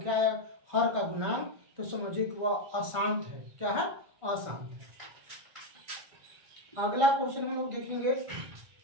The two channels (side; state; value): left; late; 1.4 ms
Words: आया हर का गुणांक, तो समझिए कि वह अशांत है। क्या है, अशांत है। अगला क्वेश्चन हम लोग देखेंगे,